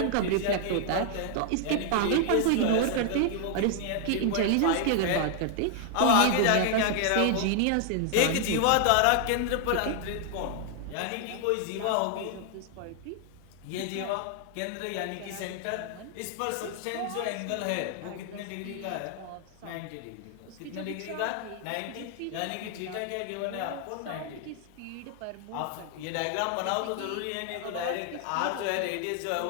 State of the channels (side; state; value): both; different; correlation 0.00